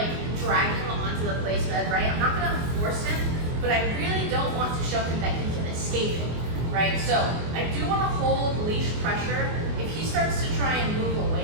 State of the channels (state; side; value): late; left; 24 ms